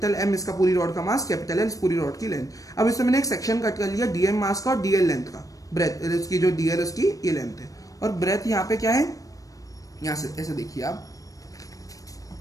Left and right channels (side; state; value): right; late; 0.16 ms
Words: एम इसका पूरी रॉड का मास, कैपिटल एल पूरी रॉड की लेंथ। अब इसमें मैंने एक सेक्शन कट कर लिया डीएम मास का और डीएल लेंथ का, ब्रेथ इसकी जो डीएल उसकी ये लेंथ है, और ब्रेथ यहाँ पे क्या है, यहाँ से ऐसे देखिए आप।